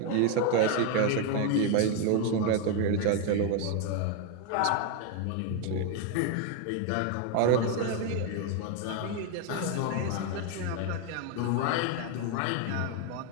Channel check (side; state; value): both; different; correlation 0.01